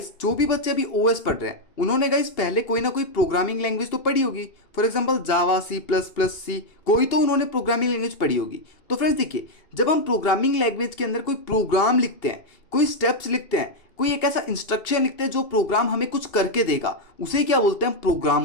जो भी बच्चे अभी ओएस पढ़ रहे हैं उन्होंने गाइस पहले कोई ना कोई प्रोग्रामिंग लैंग्वेज तो पढ़ी होगी। For example Java, C plus plus, C, कोई तो उन्होंने प्रोग्रामिंग लैंग्वेज पढ़ी होगी। तो फ्रेंड्स देखिए, जब हम प्रोग्रामिंग लैंग्वेज के अंदर कोई प्रोग्राम लिखते हैं, कोई स्टेप्स लिखते हैं, कोई एक ऐसा इंस्ट्रक्शन लिखते हैं जो प्रोग्राम हमें कुछ करके देगा, उसे क्या बोलते हैं? प्रोग्राम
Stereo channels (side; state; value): right; late; 2.8 ms